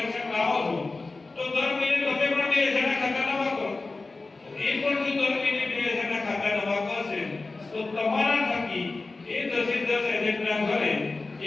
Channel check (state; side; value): quieter; right; 3.6 dB